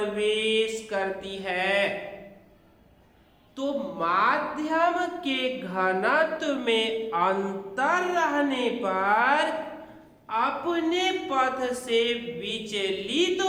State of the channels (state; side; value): identical; both; correlation 1.00